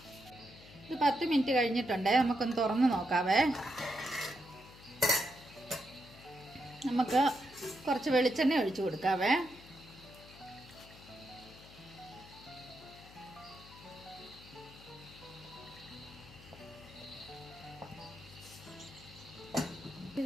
ഇത് 10 മിനിറ്റ് കഴിഞ്ഞിട്ടുണ്ട്. നമുക്കൊന്ന് തുറന്ന് നോക്കാവേ. നമുക്ക് കുറച്ച് വെളിച്ചെണ്ണ ഒഴിച്ചു കൊടുക്കാവേ.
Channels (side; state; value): left; noise; hum, 20 dB below the sound